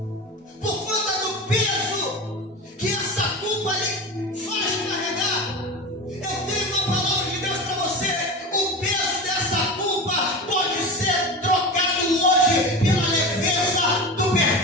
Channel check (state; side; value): normal; both; correlation 0.27